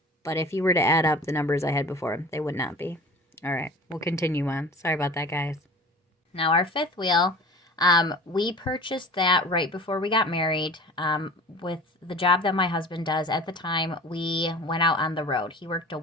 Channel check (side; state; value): both; normal; correlation 0.40